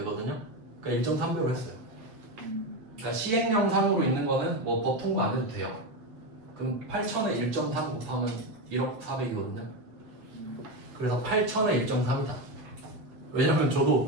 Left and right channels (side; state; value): left; late; 7.8 ms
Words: 그러니까 1.3배로 했어요. 그러니까 시행령상으로 있는 거는 뭐 법 통과 안 해도 돼요. 그럼 8천에 1.3 곱하면 1억 4백이거든요. 그래서 8천에 1.3이다. 왜냐면